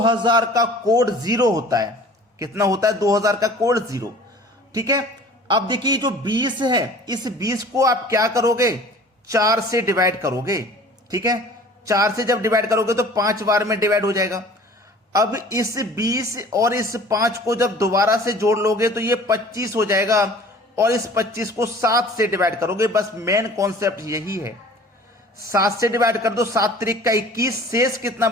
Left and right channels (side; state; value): both; normal; correlation 0.47